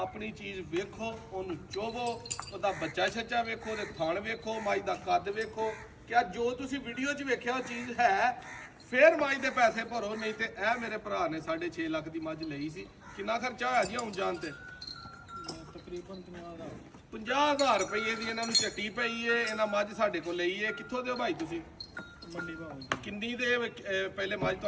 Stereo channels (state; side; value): identical; both; correlation 1.00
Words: ਚੀਜ਼ ਵੇਖੋ, ਉਹਨੂੰ ਚੋਵੋ, ਉਹਦਾ ਬੱਚਾ ਛੱਚਾ ਵੇਖੋ, ਉਹਦੇ ਥਣ ਵੇਖੋ, ਮੱਝ ਦਾ ਕੱਦ ਵੇਖੋ। ਕਿਆ ਜੋ ਤੁਸੀਂ ਵੀਡੀਓ 'ਚ ਵੇਖਿਆ ਉਹ ਚੀਜ਼ ਹੈ, ਫਿਰ ਮੱਝ ਦੇ ਪੈਸੇ ਭਰੋ। ਨਹੀਂ ਤੇ ਇਹ ਮੇਰੇ ਭਰਾ ਨੇ 6.5 ਲੱਖ ਦੀ ਮੱਝ ਲਈ ਸੀ। ਕਿੰਨਾ ਖਰਚਾ ਹੋਇਆ ਜੀ ਆਉਣ ਜਾਣ ਤੇ? ਤਕਰੀਬਨ 50,000 ਰੁਪਏ ਦੀ ਇਹਨਾਂ ਨੂੰ ਝੱਟੀ ਪਈ ਏ। ਇਹਨਾਂ ਮੱਝ ਸਾਡੇ ਕੋਲ ਲਈ ਏ। ਕਿੱਥੋਂ ਦਿਓ ਭਾਈ ਤੁਸੀਂ? ਮੰਡੀ ਭਾਅ ਕਿੰਨੀ ਦੇ ਪਹਿਲੇ ਮੱਝ